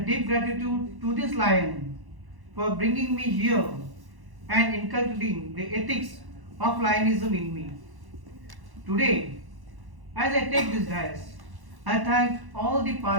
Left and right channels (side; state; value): left; late; 1.1 ms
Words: deep gratitude to this lion for bringing me here and inculcating the ethics of lionism in me. Today, as I take this dais, I thank all the